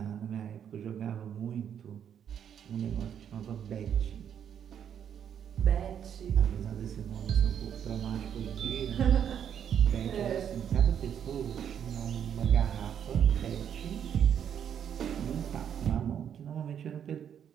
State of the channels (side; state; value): left; quieter; 8.8 dB